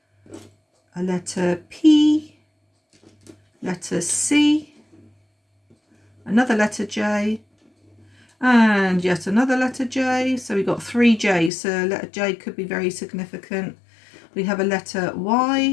A letter P, letter C, another letter J, and yet another letter J. So we've got 3 J's, so letter J could be very significant. We have a letter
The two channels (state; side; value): drops out; right; at 11.5 s